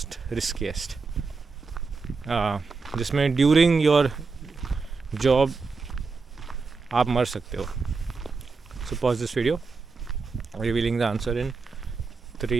riskiest, जिसमें ड्यूरिंग योर जॉब आप मर सकते हो. सो pause this video, revealing the answer in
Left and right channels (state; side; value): quieter; left; 4.5 dB